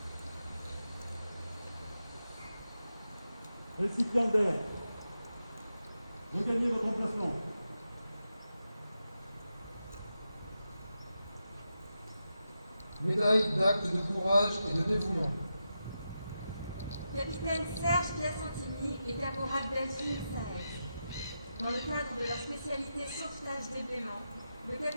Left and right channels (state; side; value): inverted; both; correlation -0.88